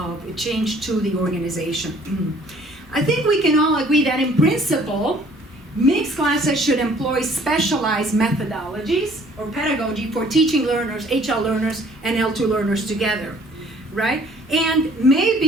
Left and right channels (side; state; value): both; normal; correlation 0.57